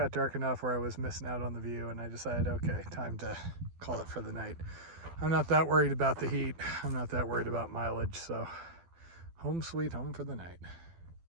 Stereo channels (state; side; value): late; left; 12 ms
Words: dark enough where I was missing out on the view, and I decided, okay, time to call it for the night. I'm not that worried about the heat. I'm not that worried about mileage, so home sweet home for the night.